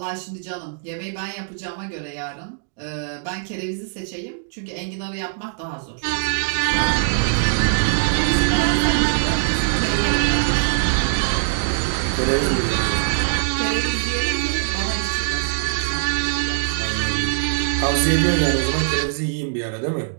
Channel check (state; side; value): silent; left; digital silence